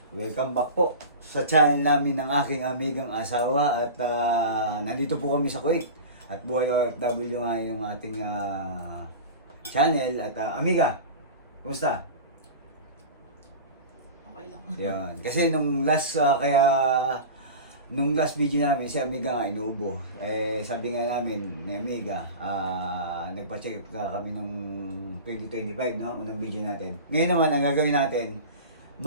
welcome back po sa channel namin ng aking amigang asawa at nandito po kami sa Kuwait at buhay OFW nga yung ating channel at amiga, kumusta? Okay lang. Yan, kasi nung last video namin si amiga nga inuubo, sabi nga namin ni amiga, nagpa-check up kami nung 2025 no, unang video natin. Ngayon naman ang gagawin natin,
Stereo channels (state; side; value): inverted; both; correlation -0.32